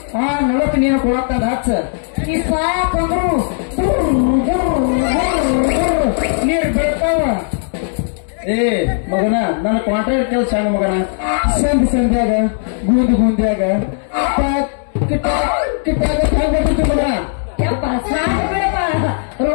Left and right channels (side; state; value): right; silent; 64 dB below the other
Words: ನಳಕ್ಕೆ ನೀನು ಕೊಡತ್ತಂದ ಹಚ್ಚ ಈ ಸಾಕಂದ್ರು ನೀರು ಬೆಳ್ತಾವ. ಮಗನ ನನ್ನ ಕಾಂಟ್ರಾಕ್ಟ್ ಕೆಲಸ ಸಣ್ಣ ಮಗನ ಸಂಧ್ಯಾಗ ಗುಂದ್ಯಾಗ ಮಗನ ಯಪ್ಪ ಸಾಕು ಬಿಡಪ್ಪ